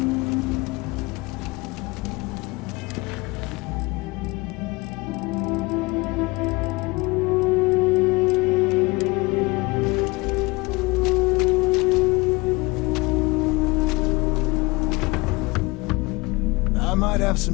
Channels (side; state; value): right; quieter; 24.5 dB